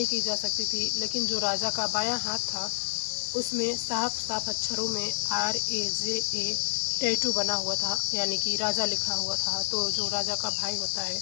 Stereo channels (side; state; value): right; silent; 59 dB below the other